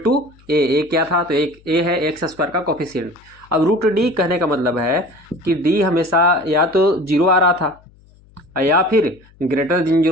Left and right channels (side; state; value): left; noise; hum, 28 dB below the sound